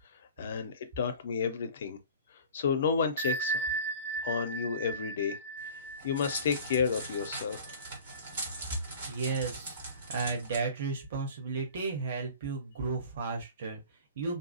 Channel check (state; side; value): inverted; both; correlation -0.43